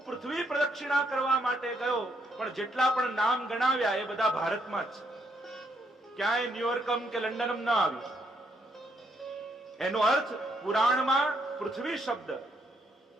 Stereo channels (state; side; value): normal; both; correlation 0.74